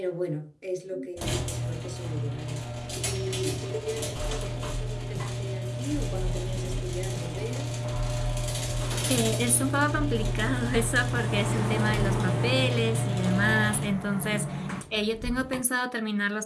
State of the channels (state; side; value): identical; both; correlation 1.00